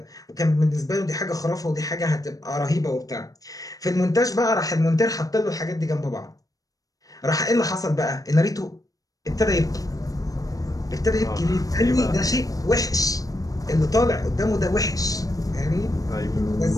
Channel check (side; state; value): right; late; 0.17 ms